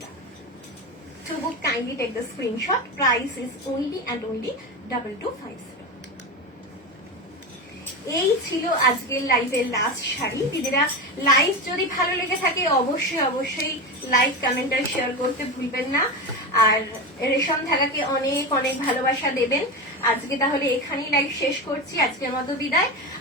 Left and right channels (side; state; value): both; normal; correlation 0.20